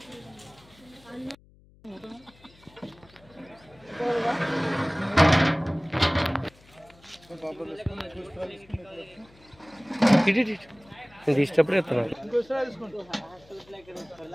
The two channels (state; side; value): noise; left; hum, 27 dB below the sound